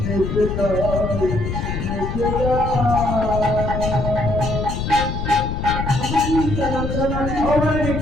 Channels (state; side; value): noise; left; rumble, 3 dB below the sound